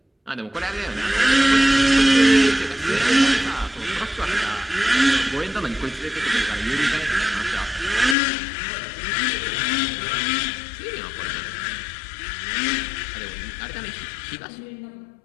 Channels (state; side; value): drops out; right; at 8.2 s